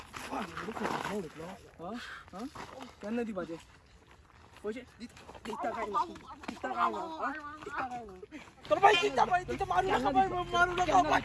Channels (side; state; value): both; identical; correlation 1.00